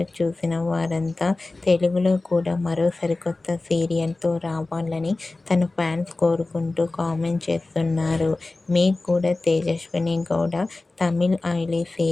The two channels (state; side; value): quieter; right; 3.2 dB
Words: చూసిన వారంతా తెలుగులో కూడా మరో సరికొత్త సీరియల్తో రావాలని తన ఫ్యాన్స్ కోరుకుంటూ కామెంట్ చేస్తున్నారు. మీకు కూడా తేజస్విని గౌడ తమిళ్ ఐలీ